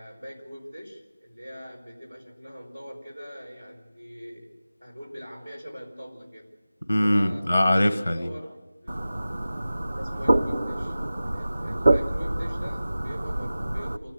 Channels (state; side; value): inverted; both; correlation -0.96